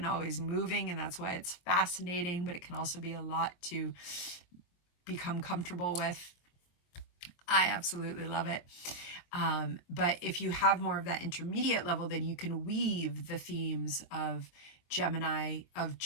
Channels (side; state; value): right; late; 23 ms